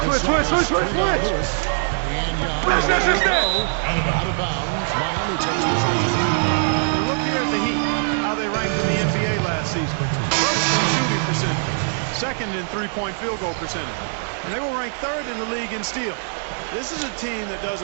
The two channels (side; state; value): left; silent; digital silence